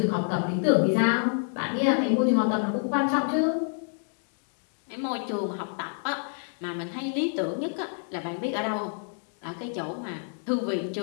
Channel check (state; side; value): silent; right; 59 dB below the other